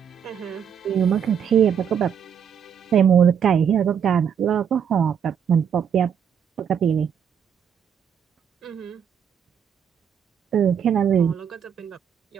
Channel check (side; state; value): left; quieter; 7.8 dB